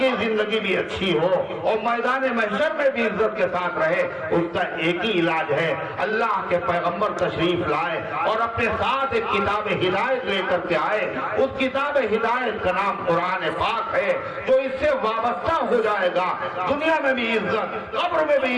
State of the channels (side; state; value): both; identical; correlation 1.00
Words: زندگی بھی اچھی ہو اور میدان محشر میں بھی عزت کے ساتھ رہے. اس کا ایک ہی علاج ہے، اللہ کے پیغمبر تشریف لائے اور اپنے ساتھ ایک کتاب ہدایت لے کر کے آئے. اس کتاب ہدایت کا نام قرآن پاک ہے، جو اس سے وابستہ ہو جائے گا. دنیا میں بھی عزت، قبر میں بھی